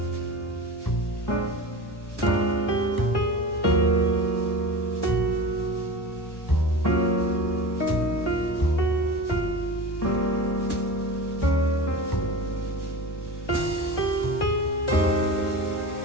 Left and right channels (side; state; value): right; late; 1.0 ms